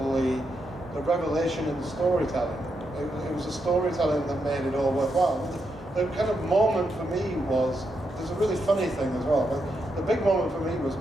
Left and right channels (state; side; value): normal; both; correlation 0.83